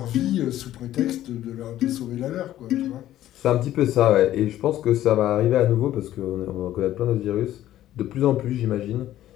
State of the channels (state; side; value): quieter; right; 13.2 dB